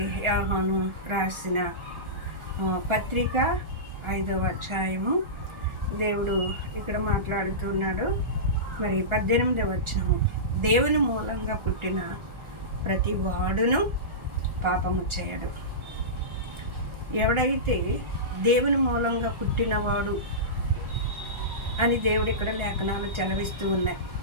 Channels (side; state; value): left; late; 1.4 ms